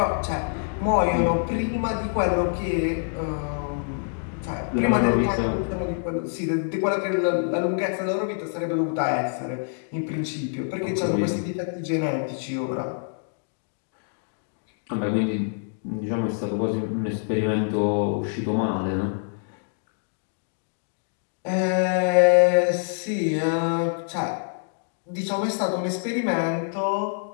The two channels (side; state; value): right; silent; digital silence